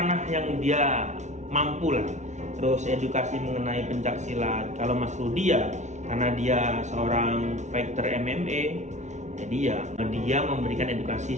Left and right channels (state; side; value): late; left; 0.34 ms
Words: yang dia mampu lah. Terus edukasi mengenai pencak silat. Kalau Mas Rudy ya, karena dia seorang fighter MMA, jadi ya dia memberikan edukasi